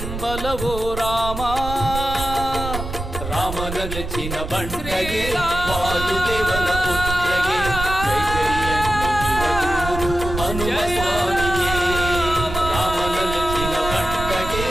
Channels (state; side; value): noise; right; rumble, 7 dB below the sound